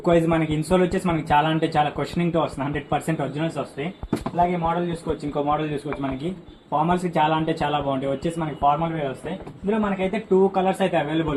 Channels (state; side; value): identical; both; correlation 1.00